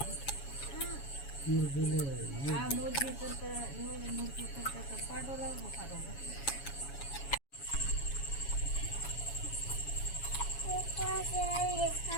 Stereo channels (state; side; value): late; right; 7.2 ms